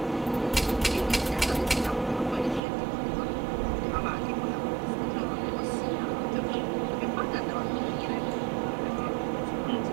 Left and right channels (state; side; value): drops out; left; at 2.6 s